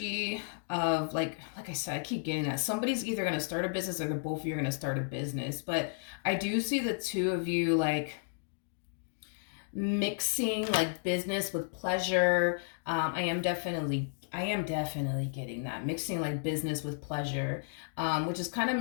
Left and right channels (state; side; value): silent; right; digital silence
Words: of like I said, I keep getting that. Somebody's either going to start a business, or the both of you are going to start a business. But I do see the two of you like mixing like business with pleasure. I am definitely getting that, mixing like business with pleasure, which is kind of